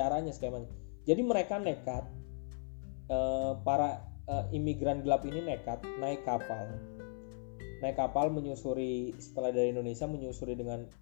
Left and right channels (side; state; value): right; silent; 53 dB below the other